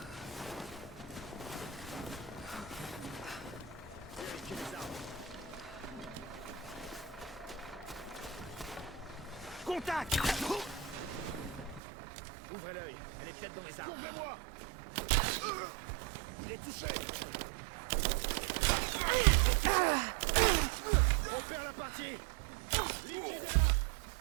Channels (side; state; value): left; drops out; at 11.8 s